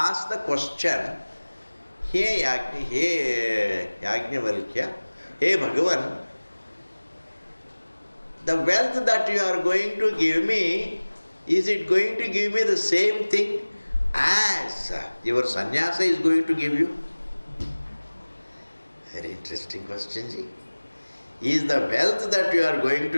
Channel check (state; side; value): inverted; both; correlation -1.00